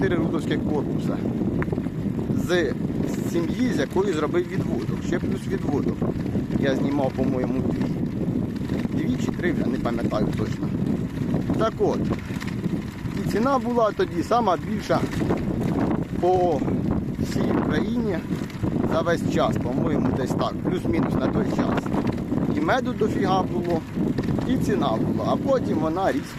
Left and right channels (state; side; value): identical; both; correlation 1.00